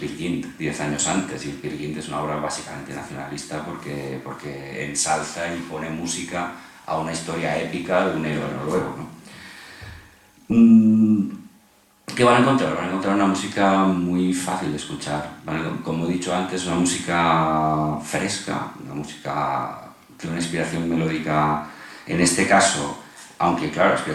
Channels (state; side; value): identical; both; correlation 1.00